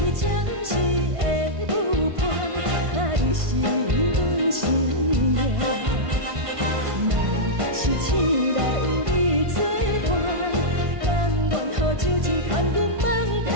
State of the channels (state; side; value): late; left; 1.5 ms